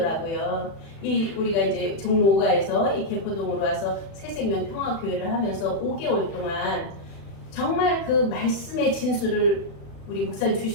우리가 이제 종로 5가에서 이 개포동으로 와서 새생명 평화교회를 하면서 5개월 동안 정말 그 말씀의 진수를 우리 목사님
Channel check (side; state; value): right; late; 36 ms